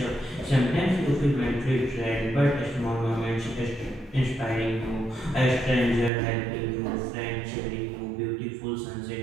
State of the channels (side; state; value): left; drops out; at 6.1 s